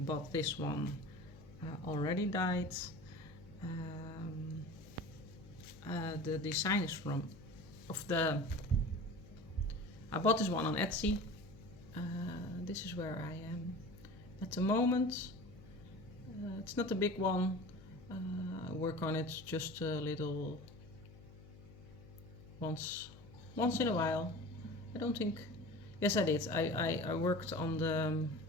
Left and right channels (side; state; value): left; noise; hum, 20 dB below the sound